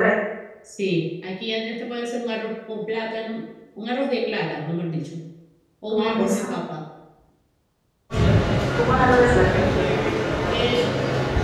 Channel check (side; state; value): both; identical; correlation 1.00